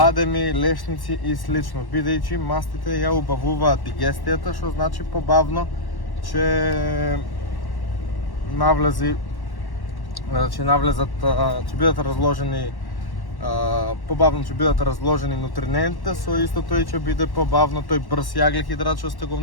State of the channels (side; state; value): right; late; 1.1 ms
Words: лешници и слично, бидејќи мастите ја убавуваат дигестијата, што значи побавно ќе ќе бидат разложени побавно ќе бидат разложени нутринентите, со истото и ќе биде побавно тој брз јаглехидрат што сте го